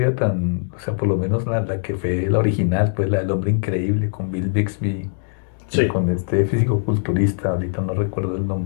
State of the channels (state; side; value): silent; right; digital silence